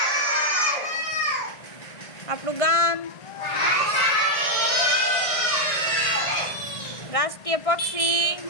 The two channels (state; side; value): late; right; 1.6 ms